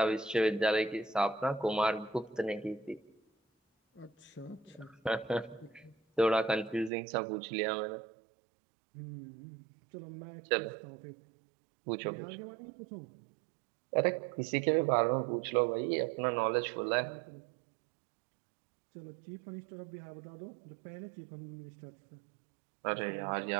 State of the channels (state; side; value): drops out; left; at 6.9 s